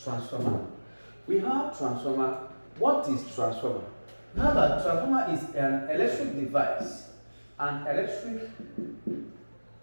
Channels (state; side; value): inverted; both; correlation -1.00